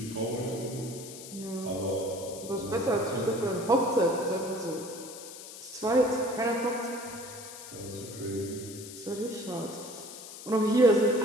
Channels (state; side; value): noise; left; hiss, 13 dB below the sound